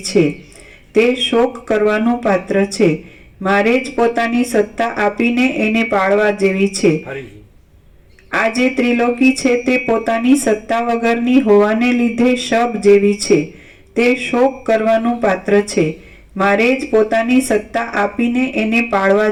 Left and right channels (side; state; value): both; identical; correlation 1.00